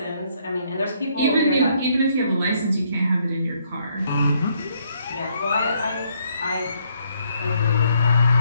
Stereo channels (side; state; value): both; inverted; correlation -0.70